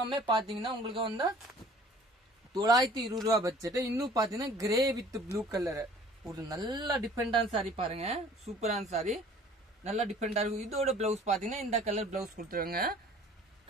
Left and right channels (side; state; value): both; normal; correlation 0.51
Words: பாத்தீங்கன்னா உங்களுக்கு வந்து 920 ரூபாய் பட்ஜெட். இன்னும் பாத்தீங்கன்னா கிரே வித் ப்ளூ கலர் ஒரு நல்ல டிஃபரெண்டான சாரி பாருங்க. சூப்பரான சாரி நல்லா டிஃபரெண்டா இருக்கும். இதோட பிளவுஸ் பாத்தீங்கன்னா இந்த கலர் பிளவுஸ் கொடுத்துருவாங்க.